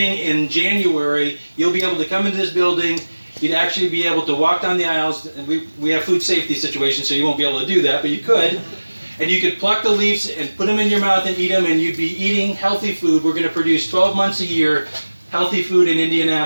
in January, you'll be able to come into this building You'd actually be able to walk down the aisles, and we have food safety situations, so you won't be able to do that, but you could. And you could pluck the leaves and put them in your mouth and eat them, and you'd be eating healthy food. We're going to produce 12 months a year healthy food in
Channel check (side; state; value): both; inverted; correlation -1.00